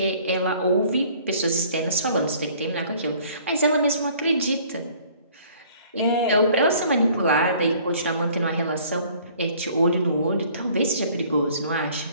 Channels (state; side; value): inverted; both; correlation -0.54